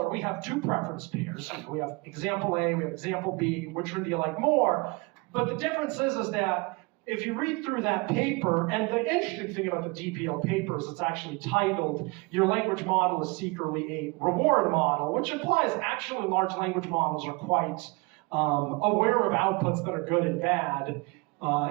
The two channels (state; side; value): quieter; left; 27.1 dB